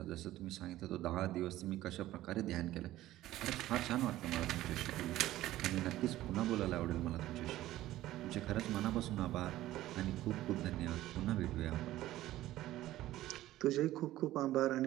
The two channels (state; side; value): quieter; left; 15.0 dB